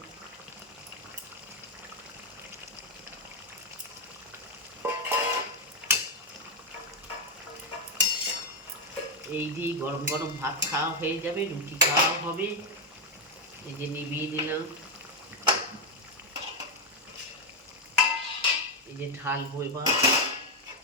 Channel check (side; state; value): both; normal; correlation 0.04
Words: এই দিয়ে গরম গরম ভাত খাওয়া হয়ে যাবে, রুটি খাওয়া হবে। এই যে নিভিয়ে দিলাম, এই যে ঢালবো এবার।